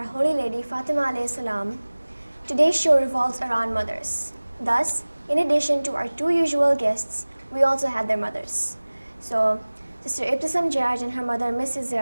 Holy Lady Fatima alayhi salam, today's show revolves around mothers. Thus, in addition to our two usual guests, we also had their mothers. So, Sister Ibtisam Jaraj and her mother Mrs.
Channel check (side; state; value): both; inverted; correlation -1.00